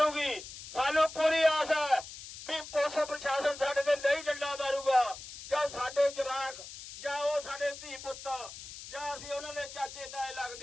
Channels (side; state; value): left; noise; hiss, 13 dB below the sound